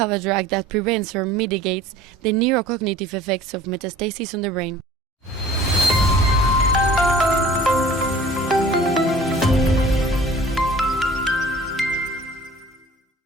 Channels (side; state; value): both; normal; correlation 0.48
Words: a drug that prevents or mitigates the neurocognitive effects of metastasis on the brain.